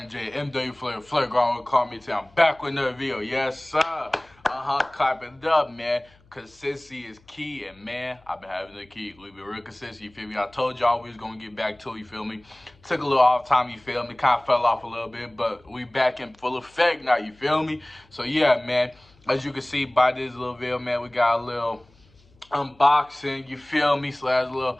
MW Flair Ground call me today. I'm back with another video. Yes, sir. Clap it up, man. Consistency is key, and man, I've been having the key. We've been real consistent, you feel me? I told y'all we was gonna get back to it, you feel me? Took a little off time, you feel me? Kind of fell off a little bit, but we back in full effect now, you feel me? So yeah, man, as you can see by this little video, man, we got a little unboxing, you feel me, slash little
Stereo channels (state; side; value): noise; left; hum, 30 dB below the sound